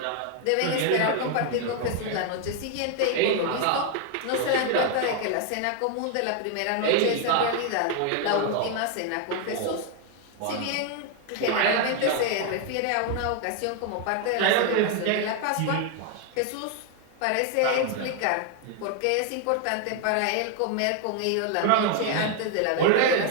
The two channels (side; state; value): both; different; correlation 0.01